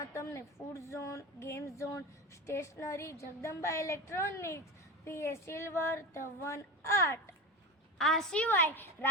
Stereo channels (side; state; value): both; normal; correlation 0.25